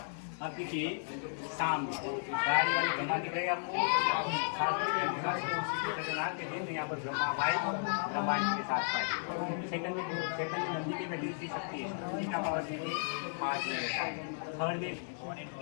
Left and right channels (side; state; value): right; silent; digital silence